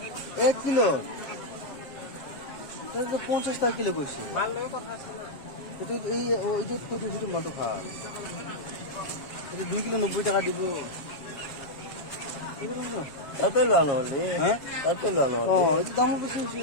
এক কিলো 50 টাকা কিলো কইছি মাল লগে কথা আছে না এটা এই ওই যে তো দুটো মাল তো খাল এটা 2 কিলো 90 টাকা দিব তাতে লানো হলে হ্যাঁ তাতে লানো ও এই দাম বেশি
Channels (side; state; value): right; late; 7.6 ms